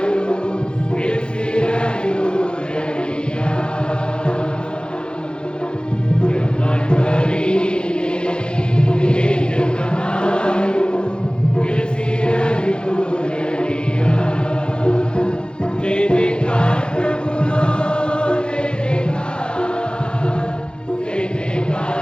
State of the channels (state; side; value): late; right; 0.051 ms